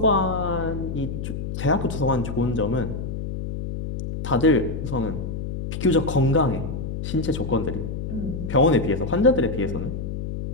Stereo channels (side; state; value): left; noise; hum, 5 dB below the sound